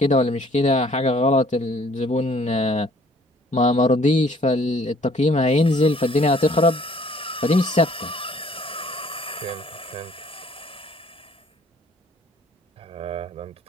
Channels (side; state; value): both; normal; correlation 0.58